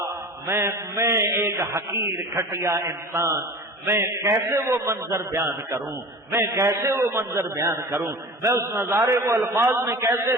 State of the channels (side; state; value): both; normal; correlation 0.37